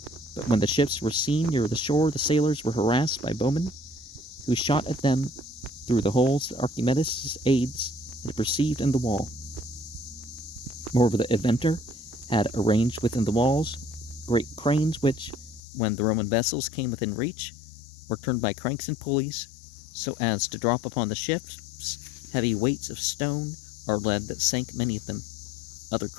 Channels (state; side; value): drops out; right; at 15.6 s